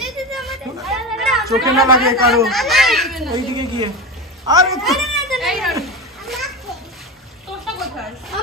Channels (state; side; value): normal; both; correlation 0.22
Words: চোখে না লাগে কারো। ওইদিকে গিয়ে আরে এই রানী তোরটা কোথায়?